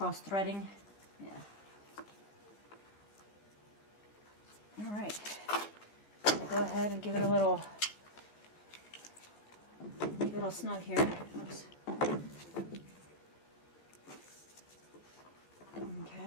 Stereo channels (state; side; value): late; right; 14 ms